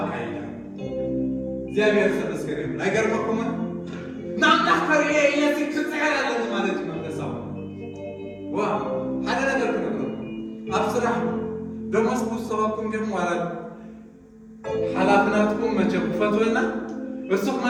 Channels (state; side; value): identical; both; correlation 1.00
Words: እግዚአብሔር ተመስገን ይሁን ኣይገርመኩምን ንኣምላኽ ከርእዮ እየሲ ክፅዕር ኣለኒ ማለት እዩ መንፈሳዊ ዋ ሓደ ነገር ክነግረኩም ኣብ ስራሕ ደሞዝ ክውሰበኩም ዲኹም ዋላ ሓላፍናትኩም መቸም ክፈትወና እሱ